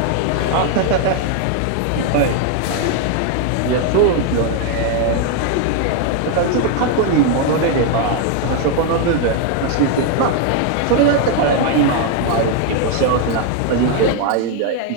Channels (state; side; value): different; both; correlation 0.00